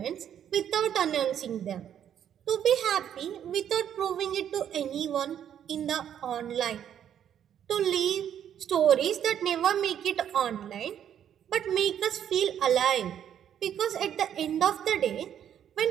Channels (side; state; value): left; quieter; 9.6 dB